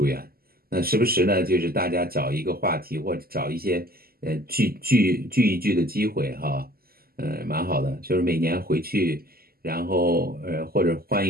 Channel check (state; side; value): late; left; 0.44 ms